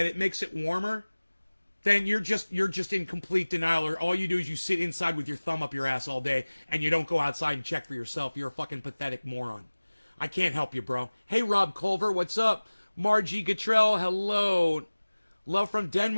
it makes it warmer, then you're just in complete denial, or all you do is you sit inside with your thumb up your ass all day and you don't go outside and check for yourself. You're a fucking pathetic moron. I can't help you, bro. Hey, Rob Culver, what's up? Margie Gatrell, hello. Love from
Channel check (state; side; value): inverted; both; correlation -1.00